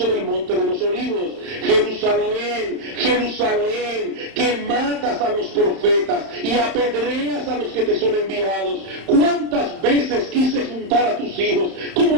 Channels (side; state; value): left; late; 31 ms